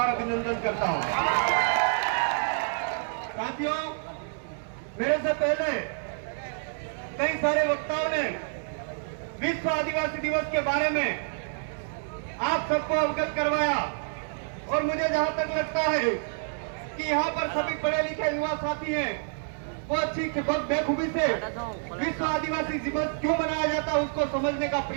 अभिनंदन करता हूं। साथियों, मेरे से पहले कई सारे वक्ताओं ने विश्व आदिवासी दिवस के बारे में आप सबको अवगत करवाया और मुझे जहां तक लगता है कि यहाँ पर सभी पढ़े लिखे युवा साथी हैं, वो अच्छी बेखूबी से विश्व आदिवासी दिवस क्यों मनाया जाता है उसको समझने का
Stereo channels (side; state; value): left; silent; digital silence